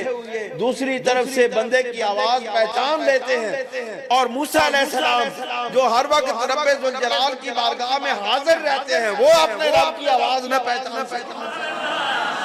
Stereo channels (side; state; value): both; identical; correlation 1.00